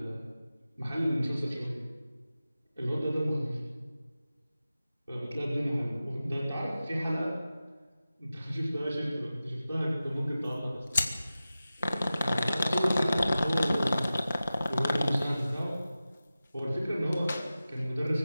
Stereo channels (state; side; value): inverted; both; correlation -0.95